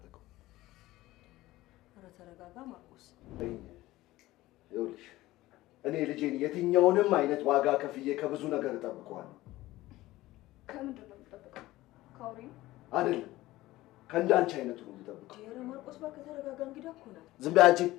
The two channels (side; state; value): right; quieter; 17.3 dB